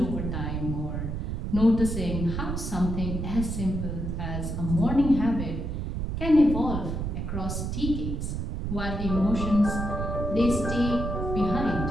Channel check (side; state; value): right; noise; rumble, 3 dB below the sound